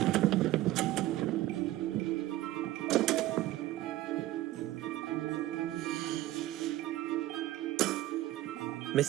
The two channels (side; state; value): left; quieter; 15.6 dB